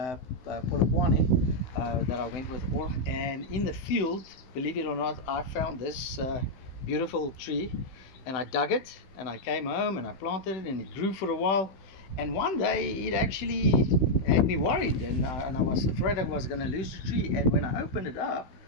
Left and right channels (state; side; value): late; right; 16 ms